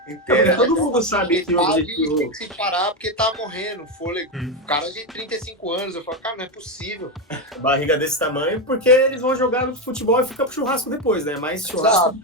inteira. Todo mundo sabe que o objetivo... tem que se parar porque tá morrendo, fôlego. Cara de 35 anos, eu falo, cara, não é possível. Barriga desse tamanho, porque eles vão jogar no futebol e fica pro churrasco depois, né? Mais churrasco do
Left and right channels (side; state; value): both; normal; correlation 0.10